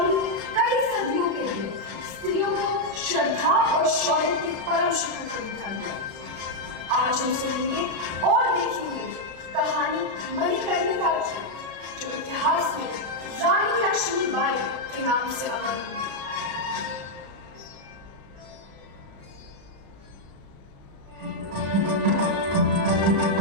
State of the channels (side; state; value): left; late; 36 ms